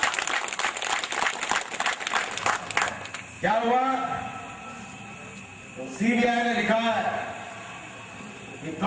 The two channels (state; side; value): identical; both; correlation 1.00